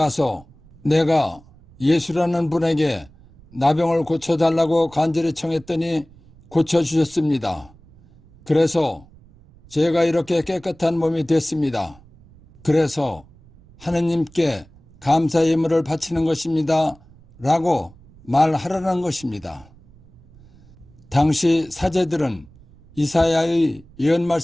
내가 예수라는 분에게 나병을 고쳐달라고 간절히 청했더니 고쳐주셨습니다. 그래서 제가 이렇게 깨끗한 몸이 됐습니다. 그래서 하느님께 감사 예물을 바치는 것입니다. 라고 말하라는 것입니다. 당시 사제들은 이사야의 예언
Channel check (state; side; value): noise; right; rumble, 25 dB below the sound